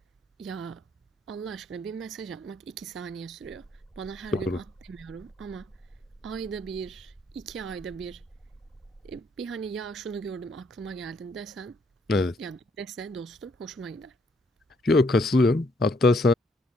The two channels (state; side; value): normal; both; correlation 0.68